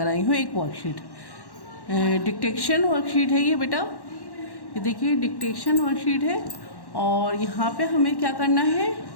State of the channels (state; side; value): late; right; 1.1 ms